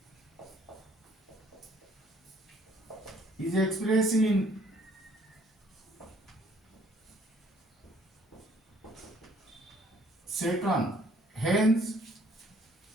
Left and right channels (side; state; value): both; normal; correlation 0.61